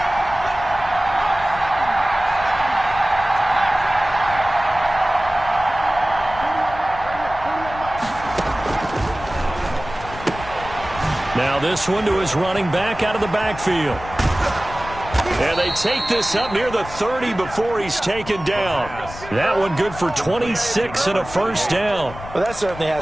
Now this one to his running back out of the backfield. And they take this up near the 30 before he's taken down. That one good for 26 and a 1st down. Well, that certainly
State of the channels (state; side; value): noise; left; rumble, 14 dB below the sound